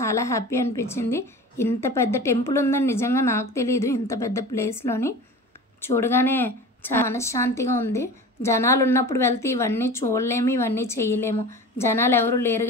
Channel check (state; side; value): normal; both; correlation 0.35